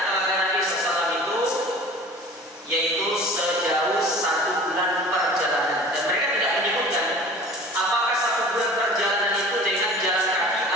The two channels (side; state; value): both; normal; correlation 0.43